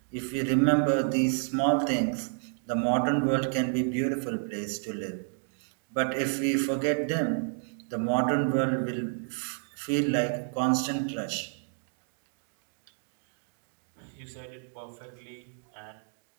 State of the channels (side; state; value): left; silent; 58 dB below the other